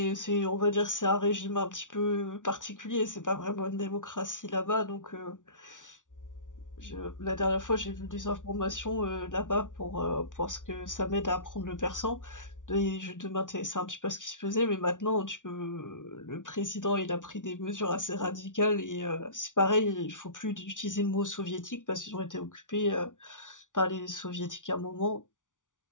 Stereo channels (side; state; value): right; late; 0.87 ms